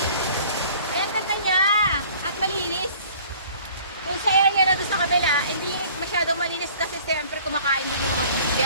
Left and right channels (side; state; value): both; inverted; correlation -0.51